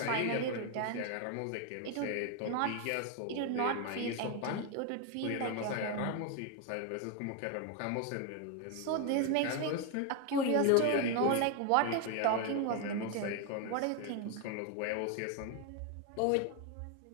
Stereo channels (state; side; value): different; both; correlation 0.01